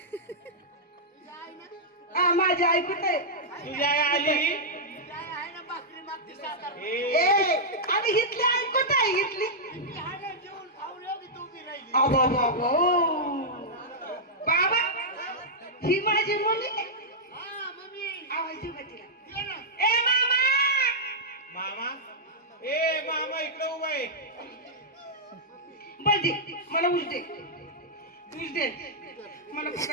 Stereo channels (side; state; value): both; normal; correlation -0.08